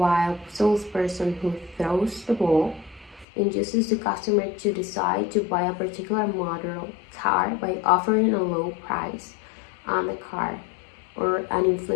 salesperson who throws the ball induces the customer to decide to buy a particular model car by offering a low price on the car or an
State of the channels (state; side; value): drops out; right; at 3.2 s